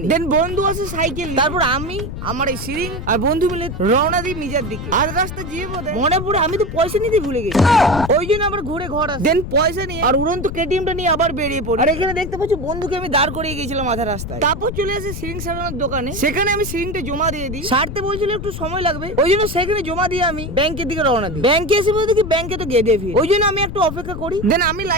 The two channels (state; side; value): noise; left; rumble, 7 dB below the sound